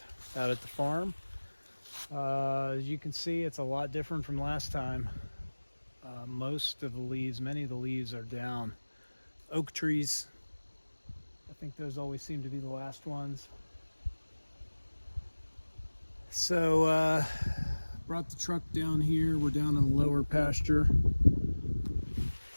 out at the farm. As you can see, it's a lot different from last time. Most of the leaves, many of the leaves are down. Oak trees, I think those always seem to be the last ones. So, brought the truck down here. We're down in the lower pasture.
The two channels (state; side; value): inverted; both; correlation -1.00